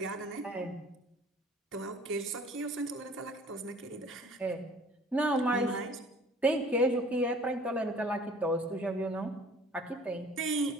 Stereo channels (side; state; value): both; normal; correlation 0.50